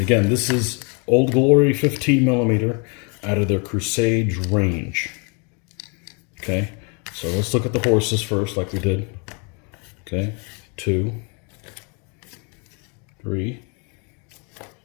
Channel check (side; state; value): right; quieter; 35.3 dB